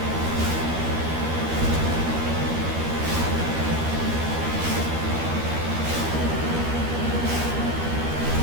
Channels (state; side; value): late; left; 13 ms